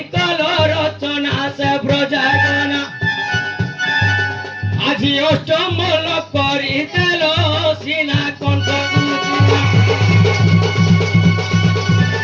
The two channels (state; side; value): identical; both; correlation 1.00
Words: কল রচনা সে ব্রজাগনা আজি অষ্টমল করি দেল সিনা কণ্ঠ